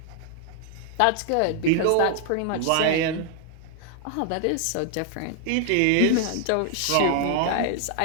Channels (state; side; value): different; both; correlation 0.00